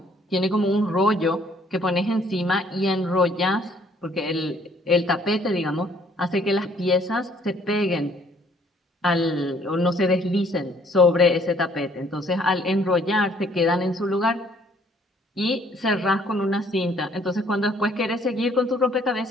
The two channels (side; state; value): both; normal; correlation 0.62